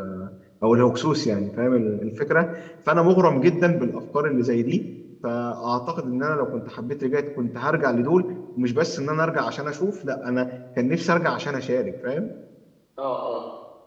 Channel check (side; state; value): both; identical; correlation 1.00